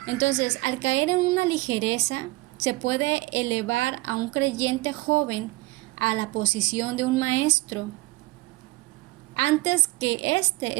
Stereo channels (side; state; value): left; quieter; 21.0 dB